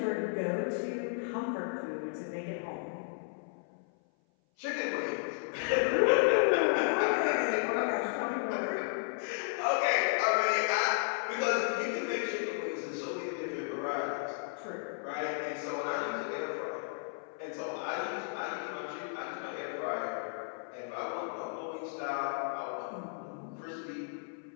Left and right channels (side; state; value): right; silent; 55 dB below the other